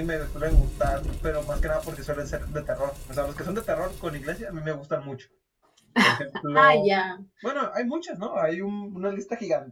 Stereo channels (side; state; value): both; identical; correlation 1.00